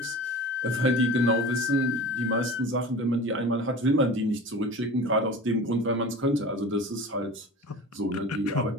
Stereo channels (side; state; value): both; normal; correlation 0.36